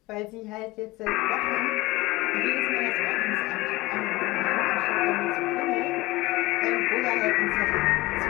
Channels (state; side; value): quieter; right; 19.7 dB